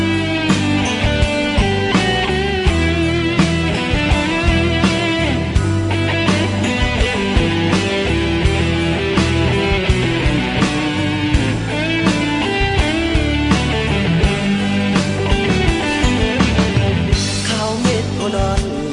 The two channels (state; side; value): identical; both; correlation 1.00